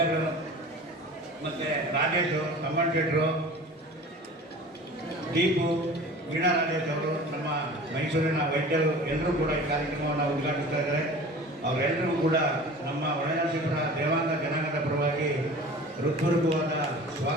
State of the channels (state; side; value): normal; both; correlation 0.40